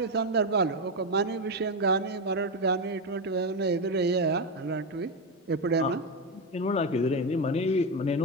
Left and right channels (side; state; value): both; normal; correlation 0.11